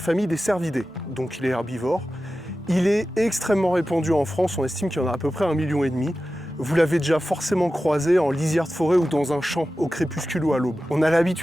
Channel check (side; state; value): both; normal; correlation 0.94